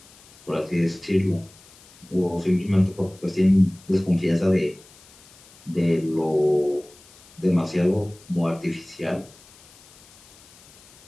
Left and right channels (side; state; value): left; noise; hiss, 25 dB below the sound